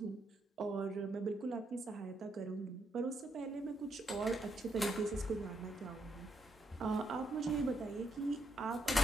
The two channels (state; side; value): normal; both; correlation 0.77